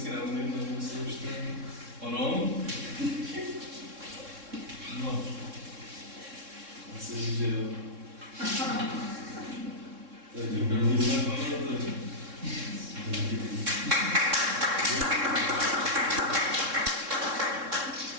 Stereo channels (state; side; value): late; left; 3.7 ms